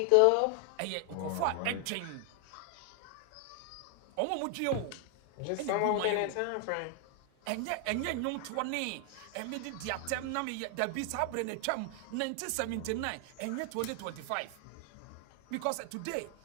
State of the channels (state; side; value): different; both; correlation 0.00